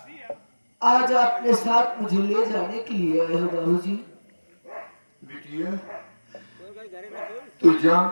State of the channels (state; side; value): inverted; both; correlation -1.00